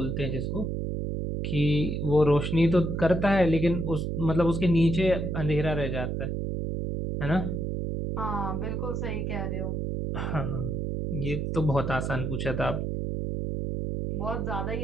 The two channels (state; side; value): noise; right; hum, 2 dB below the sound